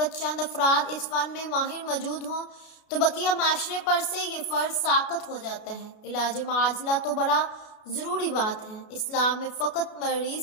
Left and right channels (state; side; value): late; right; 33 ms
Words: چند افراد اس فن میں ماہر موجود ہوں تو بقیہ معاشرے پر سے یہ فرض ساقط ہو جاتا ہے۔ علاج معاجلہ تو بڑا ضروری بات ہے۔ اسلام میں فقط مریض